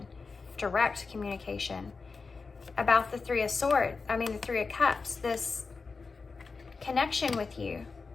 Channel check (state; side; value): quieter; right; 4.5 dB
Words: direct communication about the Three of Swords. I mean, the Three of Cups, this connection with you.